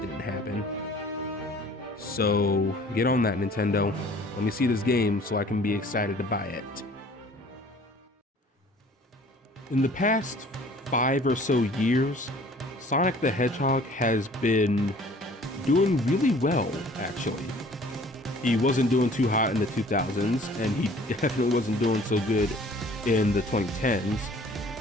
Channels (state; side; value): normal; both; correlation 0.51